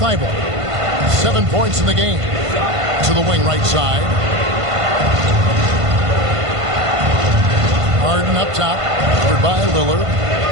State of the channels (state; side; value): late; left; 1.5 ms